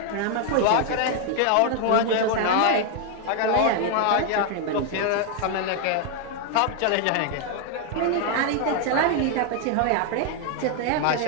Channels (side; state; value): both; different; correlation 0.00